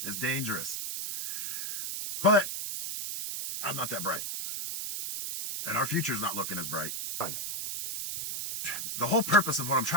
It's dangerous. But I'm not that bright. And our future's not looking as bright. The whole purpose of what I'm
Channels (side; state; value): right; noise; hiss, 4 dB below the sound